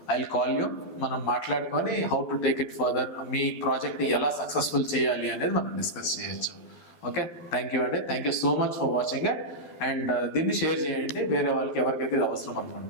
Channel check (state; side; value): late; right; 12 ms